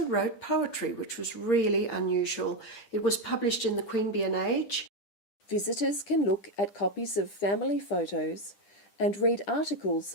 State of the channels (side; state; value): right; late; 10 ms